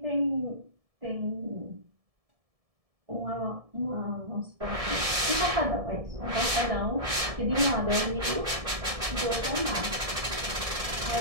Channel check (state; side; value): late; left; 1.7 ms